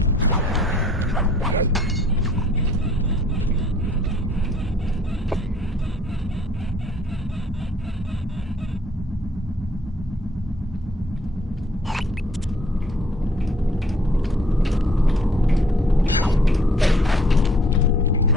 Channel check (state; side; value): normal; both; correlation 0.60